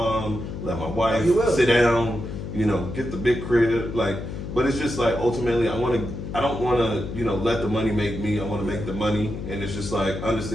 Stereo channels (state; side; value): noise; left; hum, 7 dB below the sound